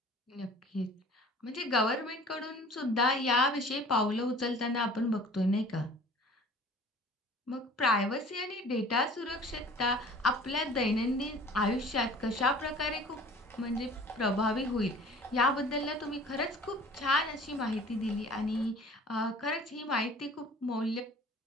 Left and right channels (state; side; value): normal; both; correlation 0.47